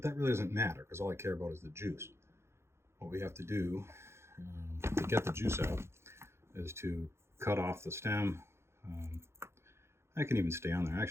that really doesn't matter because all I care about is the juice. What we have to do to get the juice out is to cut off the stem. I can even stay on there.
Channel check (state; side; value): late; left; 0.13 ms